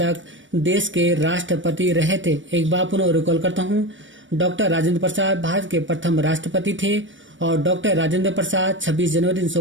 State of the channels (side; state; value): left; late; 0.56 ms